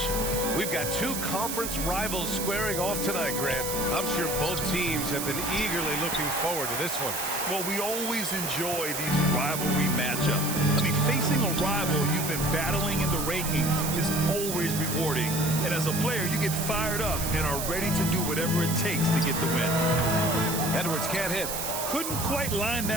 We've got two conference rivals squaring off tonight, Grant. I'm sure both teams have been eagerly looking forward to this one. Well, we always enjoy these rivalry matchups. I mean, facing a rival you've been battling in the rankings is always rewarding. And as a player, you get fired up and are ready to do whatever it takes to get the win. Edwards can't hit. Couldn't quite line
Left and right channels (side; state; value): right; noise; hiss, 4 dB below the sound